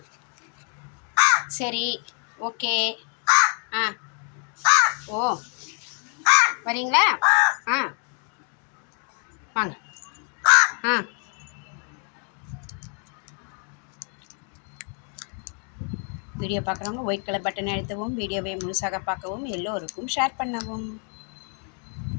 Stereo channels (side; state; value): right; quieter; 39.8 dB